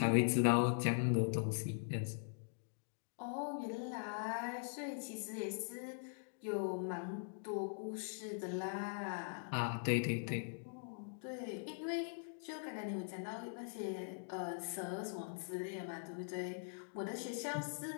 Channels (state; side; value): silent; right; digital silence